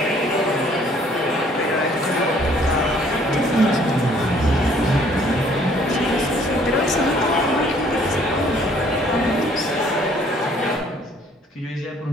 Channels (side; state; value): both; normal; correlation 0.60